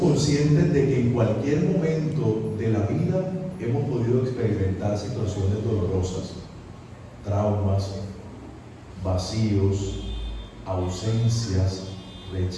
de que en cualquier momento de la vida hemos podido experimentar situaciones dolorosas, traumas, vacíos, ausencias,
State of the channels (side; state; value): both; identical; correlation 1.00